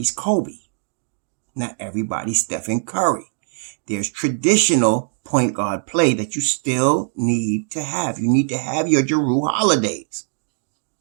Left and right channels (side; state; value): left; silent; 56 dB below the other